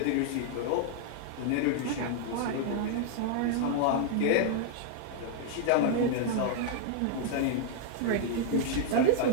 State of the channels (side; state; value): both; different; correlation 0.00